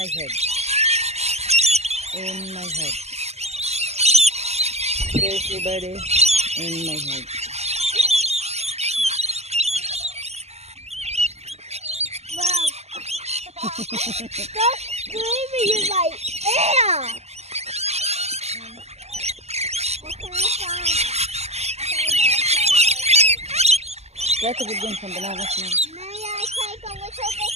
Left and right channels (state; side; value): late; left; 0.31 ms